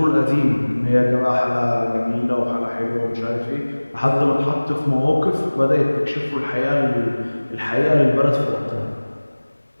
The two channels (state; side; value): inverted; both; correlation -1.00